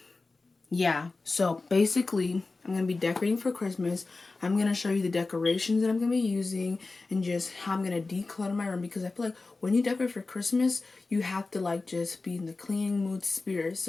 Yeah, so basically, I'm going to be decorating for Christmas. I'm going to show you the decorations that I'm going to be using and just how I'm going to declutter my room, because I feel like when you decorate for Christmas, you have to just be in the cleaning mood spirit.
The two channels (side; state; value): right; quieter; 3.6 dB